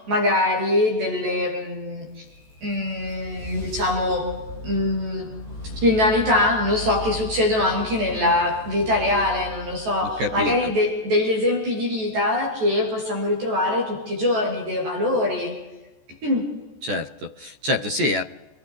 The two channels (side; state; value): left; late; 14 ms